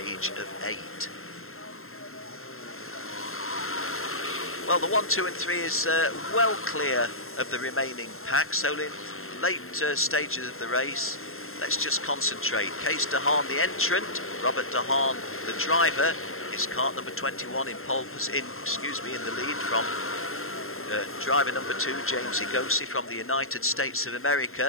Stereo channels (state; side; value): late; right; 0.61 ms